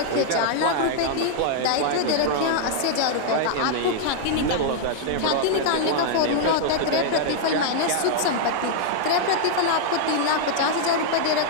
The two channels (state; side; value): different; both; correlation -0.01